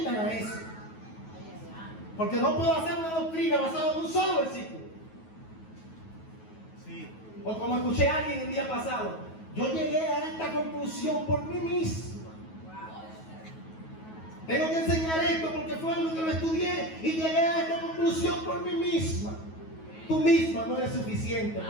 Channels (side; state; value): right; late; 9.3 ms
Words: a eso. Porque no puedo hacer una doctrina basada en un solo versículo. Sí. O como escuché a alguien el día pasado: yo llegué a esta conclusión por mí mismo. Tengo que enseñar esto porque fue algo que lo estudié y llegué a esta conclusión por mí misma. Tú misma no eres suficiente,